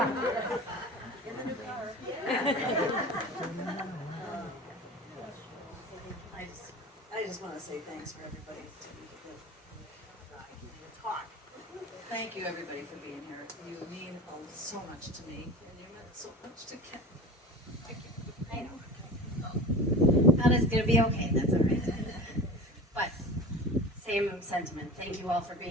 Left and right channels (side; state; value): both; normal; correlation 0.35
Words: In the new car. I just want to say thanks for everybody to talk. Thank you everybody for being here. You mean so much to me, and you meant so much to Ken. Thank you. I know. Anna's gonna be okay, that's all right. But, same sentiment. Thank you all for